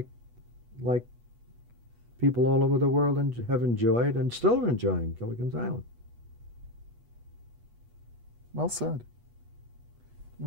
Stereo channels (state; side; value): late; left; 8.3 ms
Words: people all over the world have enjoyed and still are enjoying Gilligan's Island. Well said. You